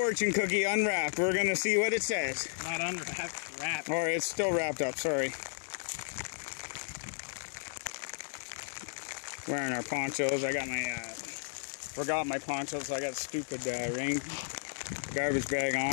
cookie unwrapped. We're gonna see what it says. Not unwrapped, wrapped. Or it's still wrapped up, sorry. Wearing our ponchos. I got my, forgot my ponchos, so I got stupid rain garbage bag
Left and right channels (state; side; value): silent; right; digital silence